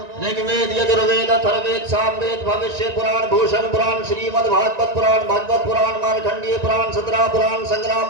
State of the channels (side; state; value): left; late; 1.9 ms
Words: ऋग्वेद यजुर्वेद अथर्ववेद सामवेद भविष्य पुराण भूषण पुराण श्रीमद् भागवत पुराण भागवत पुराण मार्कंडेय पुराण सतरा पुराण संग्राम